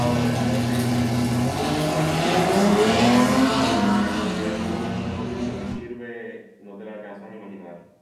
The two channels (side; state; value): both; identical; correlation 1.00